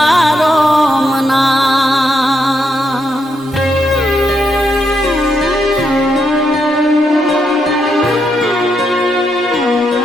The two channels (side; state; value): both; normal; correlation 0.80